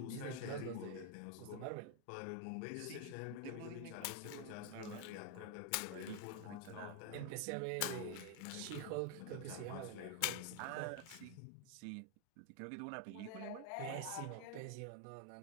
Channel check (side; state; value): both; different; correlation 0.00